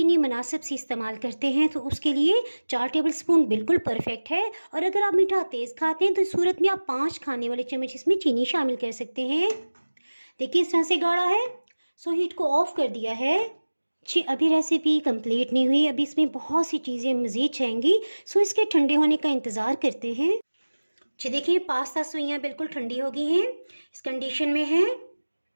मुनासिब सी इस्तेमाल करते हैं तो उसके लिए 4 टेबल स्पून बिल्कुल परफेक्ट है और अगर आप मीठा तेज़ खाते हैं तो इस सूरत में आप 5 खाने वाले चम्मच इसमें चीनी शामिल कर सकते हैं। देखिए इस तरह से गाढ़ा है। सो हीट को ऑफ कर दिया है। जी, अभी रेसिपी कंप्लीट नहीं हुई, अभी इसमें बहुत सी चीज़ें मज़ीद चाहिए। सो इसके ठंडे होने का इंतज़ार करते हैं। जी देखिए, पास्ता सवैयाँ बिल्कुल ठंडी हो गई हैं, इस कंडीशन में है।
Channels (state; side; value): inverted; both; correlation -1.00